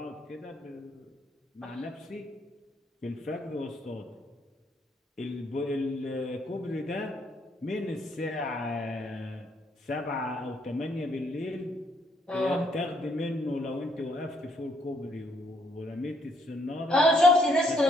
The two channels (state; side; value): normal; both; correlation 0.70